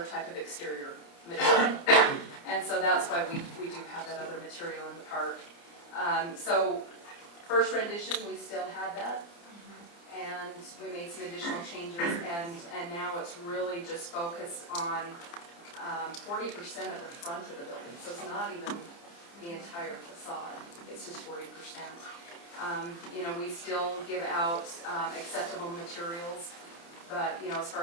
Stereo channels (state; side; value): late; right; 29 ms